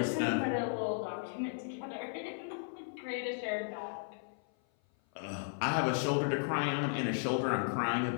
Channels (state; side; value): silent; right; 54 dB below the other